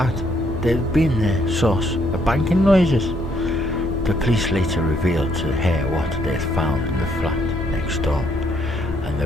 They'd been the source of banking noises. The police later revealed to her what they had found in the flat next door, and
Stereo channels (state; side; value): normal; both; correlation 0.70